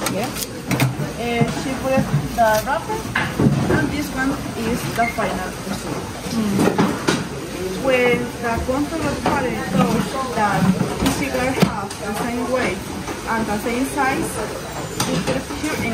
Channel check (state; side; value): identical; both; correlation 1.00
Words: Yeah. She put it the wrapper, and this one is the final result. When the control party shows that the cigar has the same weight and the same size, we put it here in